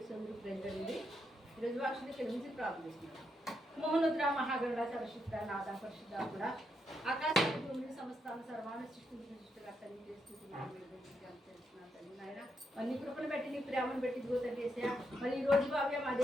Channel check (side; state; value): both; normal; correlation 0.81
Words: సోదరు ప్రజలండి ఈరోజు వాక్షులు కలిసి ప్రార్థిస్తున్నాను. మోహనుద్ర మహాగరుడ సరశుద్ధ నాద పరిశుద్ధ కూడా ఆకాశ భూమిని సమస్తాన్ని సర్వాన్ని సృష్టికర్తని తెలుస్తున్నాను నాయన. నీ కృపను బట్టి నీ ప్రేమను బట్టి గోతండి వేసా. మరి ఈ రోజు భావ్య మా